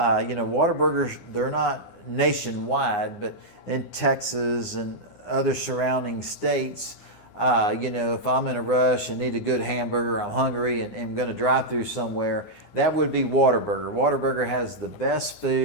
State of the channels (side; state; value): right; late; 9.7 ms